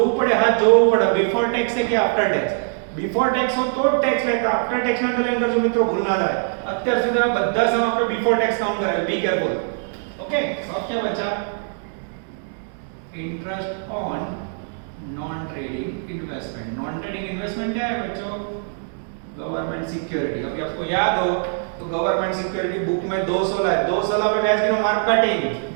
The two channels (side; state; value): left; silent; 64 dB below the other